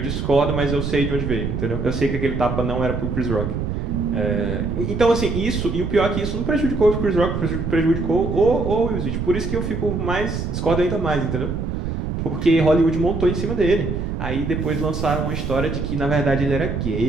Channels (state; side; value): noise; right; rumble, 3 dB below the sound